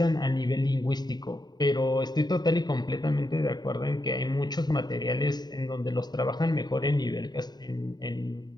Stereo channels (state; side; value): late; right; 0.20 ms